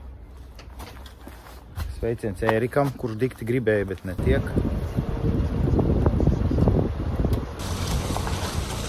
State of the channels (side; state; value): both; identical; correlation 1.00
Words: Sveiciens Ērikam, kurš dikti gribēja, bet netiek.